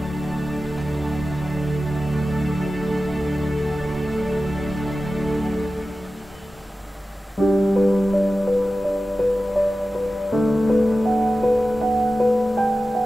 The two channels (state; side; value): normal; both; correlation 0.94